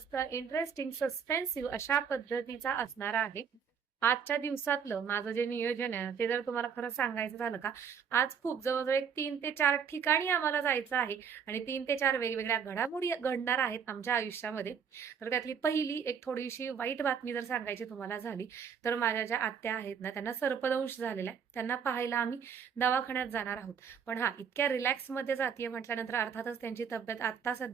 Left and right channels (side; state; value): left; quieter; 7.1 dB